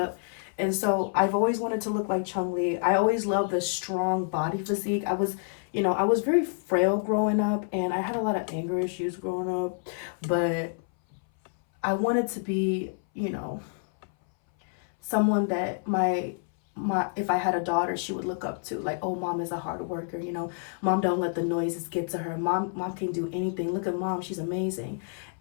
And so I've always wanted to look like Chung Lee. I always loved the strong body physique. I was very frail growing up, and I had a lot of anger issues growing up, but I wanted to be, you know, someone that my if I had a daughter, she would look up to. Like, oh, mom is a hard worker, you know, mom don't let the noises get to her, mom can do anything, look at mom, she's amazing.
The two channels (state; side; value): silent; right; 59 dB below the other